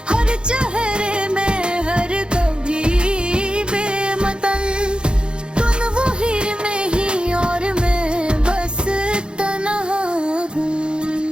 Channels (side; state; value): left; late; 0.052 ms